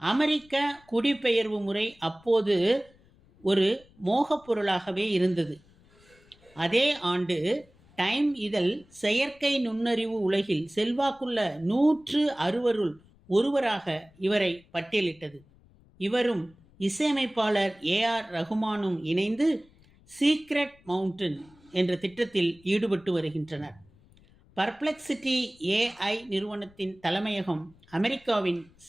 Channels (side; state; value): left; noise; rumble, 29 dB below the sound